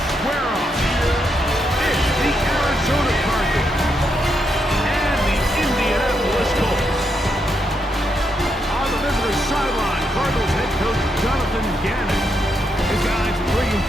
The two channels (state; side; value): normal; both; correlation 0.80